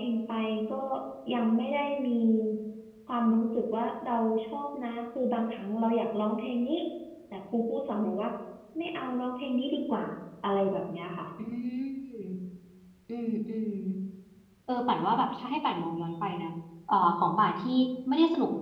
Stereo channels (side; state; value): both; identical; correlation 1.00